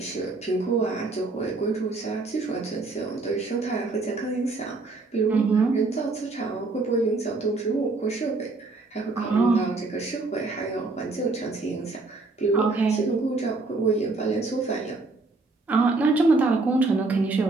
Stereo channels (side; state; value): left; quieter; 3.5 dB